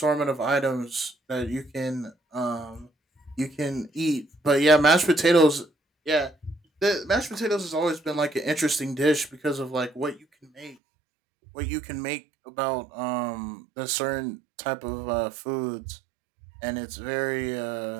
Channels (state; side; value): drops out; left; at 10.8 s